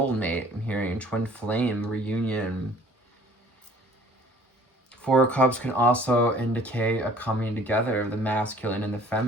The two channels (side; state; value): both; normal; correlation 0.53